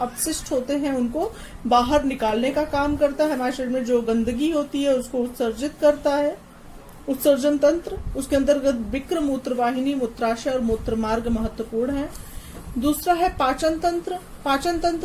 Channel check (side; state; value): both; identical; correlation 1.00